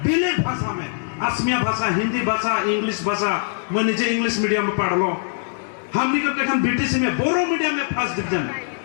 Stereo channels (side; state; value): right; silent; digital silence